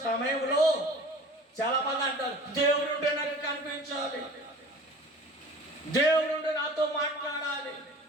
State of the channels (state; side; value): normal; both; correlation 0.43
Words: సమయంలో చాలా మంది అంటారు, దేవుడు ఉంటే నాకు కనిపించాలి, దేవుడు ఉంటే నాతో మాట్లాడాలి.